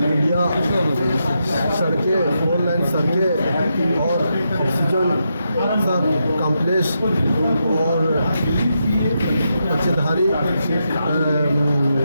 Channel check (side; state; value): both; inverted; correlation -0.84